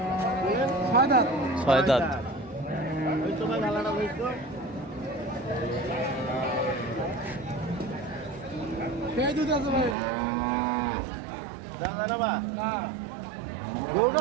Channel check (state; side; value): drops out; left; at 10.0 s